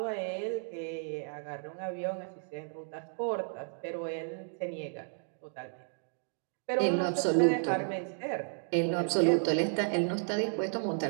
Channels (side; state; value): left; silent; 56 dB below the other